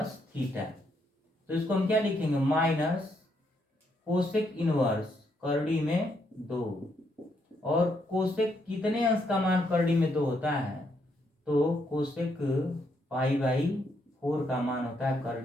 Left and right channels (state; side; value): normal; both; correlation 0.76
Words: थीटा। तो इसको हम क्या लिखेंगे, माइनस कोसेक इनवर्स करड़ी में 2। और कोसेक कितने अंश का मान करड़ी में 2 होता है, तो कोसेक पाई बाई 4 का मान होता है